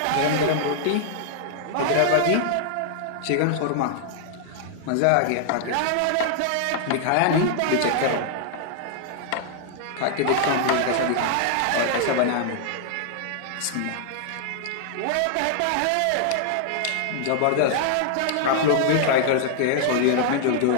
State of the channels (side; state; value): both; different; correlation 0.00